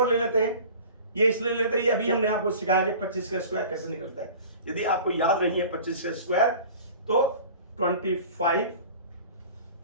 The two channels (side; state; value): both; inverted; correlation -0.42